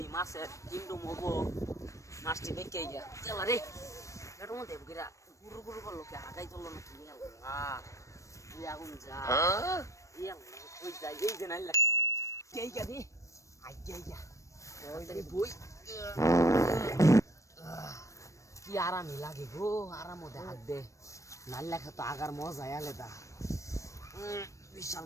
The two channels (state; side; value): late; right; 0.15 ms